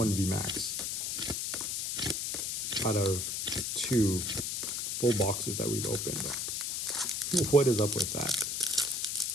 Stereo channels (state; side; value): noise; left; hiss, 1 dB below the sound